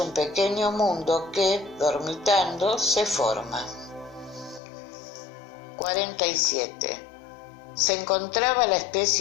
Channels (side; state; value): right; drops out; at 4.6 s